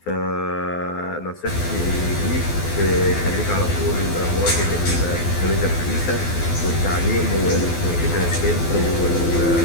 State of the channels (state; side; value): late; right; 12 ms